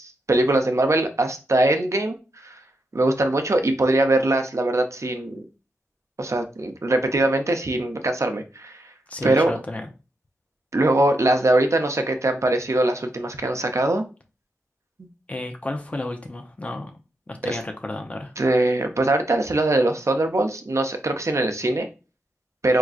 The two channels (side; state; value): both; normal; correlation 0.82